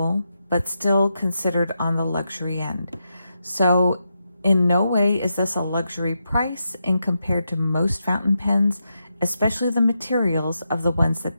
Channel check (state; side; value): inverted; both; correlation -0.85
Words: but still considered on the luxury end. So in no way is this a luxury price in compared to most fountain pens, especially the materials of the ones